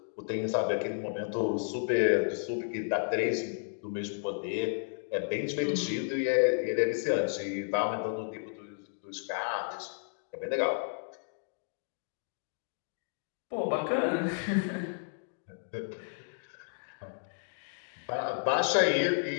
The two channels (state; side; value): silent; right; digital silence